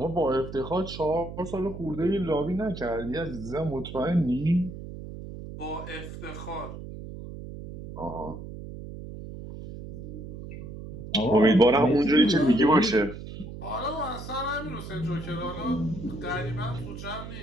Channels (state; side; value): noise; right; hum, 11 dB below the sound